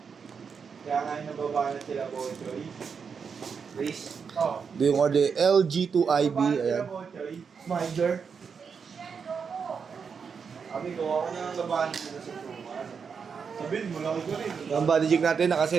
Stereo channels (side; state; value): left; quieter; 6.1 dB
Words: Kaya nga nababa na sila Bochoy. Please. Oh. Ito yung order LG2IB. Ayan. Minder. Sabi ko, ako na ang labahan nila sa tuman. Sabihin mo, laki ko rin. Ang body jig natin,